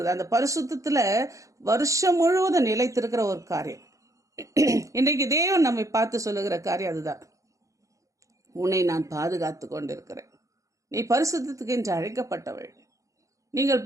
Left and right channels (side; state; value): left; late; 0.15 ms